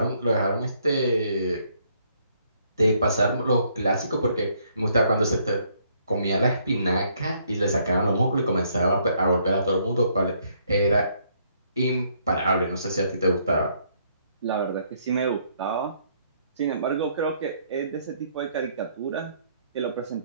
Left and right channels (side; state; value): both; inverted; correlation -0.69